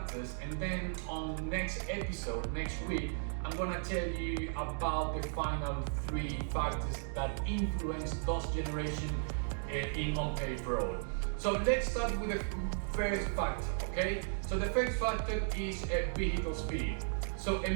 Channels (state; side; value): silent; left; digital silence